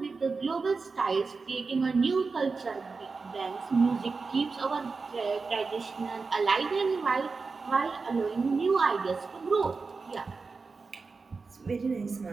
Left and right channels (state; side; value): quieter; left; 4.4 dB